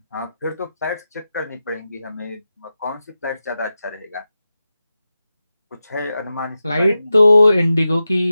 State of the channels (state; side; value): inverted; both; correlation -0.91